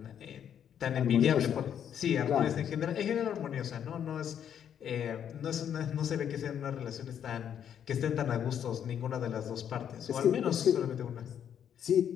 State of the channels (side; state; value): right; quieter; 9.0 dB